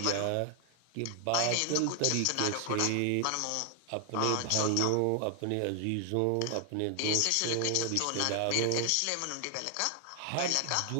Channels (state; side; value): different; both; correlation 0.00